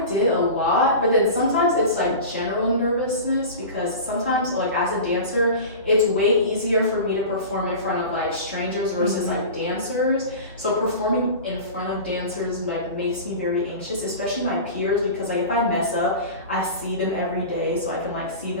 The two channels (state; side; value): inverted; both; correlation -0.32